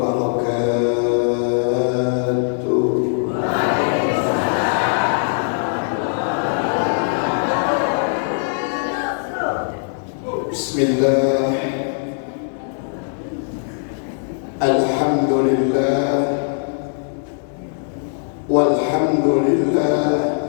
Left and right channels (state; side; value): silent; right; digital silence